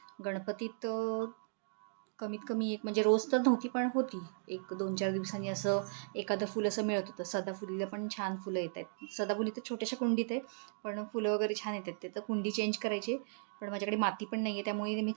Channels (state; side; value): silent; left; digital silence